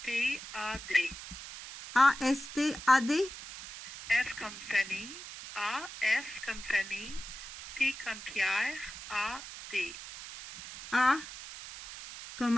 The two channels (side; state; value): right; noise; hiss, 12 dB below the sound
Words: A-S-T-A-D? F comme famille, A-S comme famille, P comme Pierre, A-D. A comme